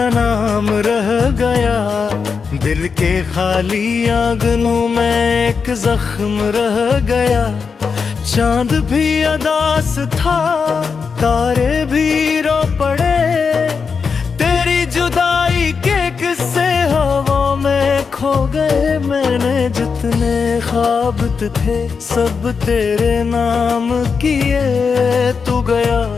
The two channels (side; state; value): right; quieter; 5.5 dB